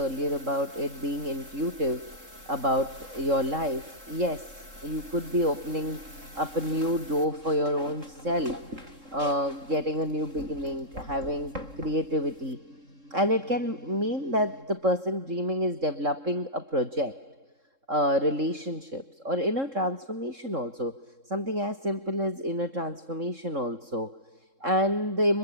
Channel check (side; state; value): left; late; 3.7 ms